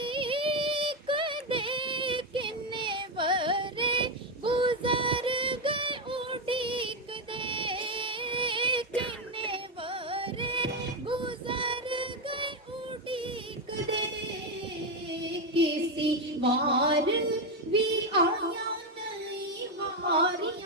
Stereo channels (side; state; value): both; normal; correlation 0.08